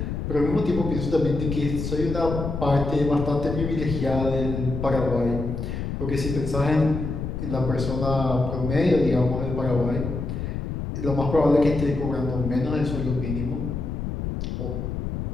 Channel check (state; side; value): noise; left; rumble, 4 dB below the sound